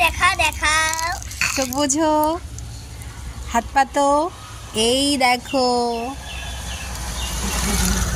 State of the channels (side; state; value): both; identical; correlation 1.00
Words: দেখাও। চোখ বোঝো, হাত পাতো, এই দেখো।